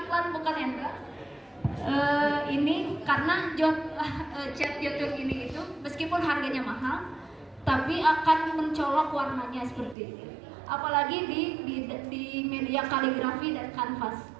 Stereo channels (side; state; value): left; drops out; at 10.0 s